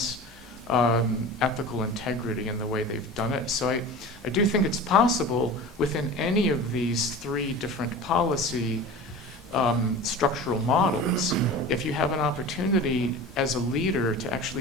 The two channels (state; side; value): normal; both; correlation 0.35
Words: ethical integrity in the way they've done it. So I do think it's possible within any of these three different policy structural models, if you have an opportunity as a leader to